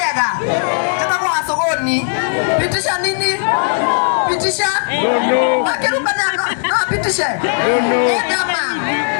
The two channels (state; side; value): silent; right; 61 dB below the other